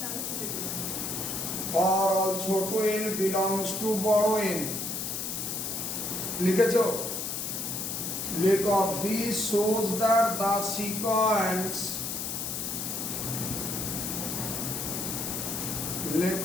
for all ছোট n belongs to বড় n। লিখেছো? লেখো this shows that the sequence,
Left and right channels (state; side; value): noise; left; hiss, 3 dB below the sound